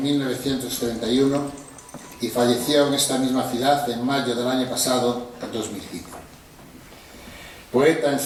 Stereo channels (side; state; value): both; identical; correlation 1.00